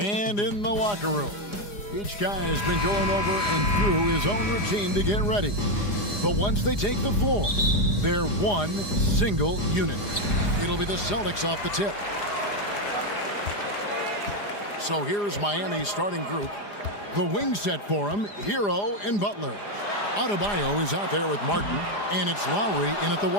And in the locker room, each guy has been going over and through his own routine to get ready. But once they take the floor, they're one single unit. It'll be the Celtics off the tip. So here's Miami's starting group. The wing set for him, Hero and Butler. Adebayo is out there with Martin, and it's Lowry in at the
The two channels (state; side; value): late; right; 4.9 ms